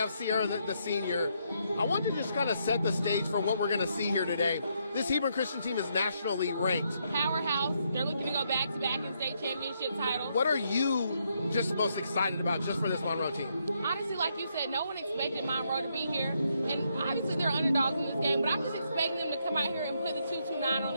Sierra, the senior. I want to just kind of set the stage for what we're going to see here today. This Hebron Christian team is nationally ranked. Powerhouse. They're looking to go back-to-back in state championship titles. What are you just most excited about just for this Monroe team? Honestly, like you said, no one expected Monroe to be here. And obviously they're underdogs in this game, but I'm just expecting them to come out here and put the 229 on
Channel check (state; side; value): inverted; both; correlation -0.76